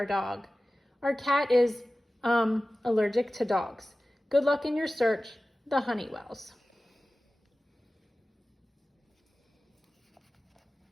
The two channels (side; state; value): both; normal; correlation 0.96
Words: dog. Our cat is, allergic to dogs. Good luck in your search, the Honeywells.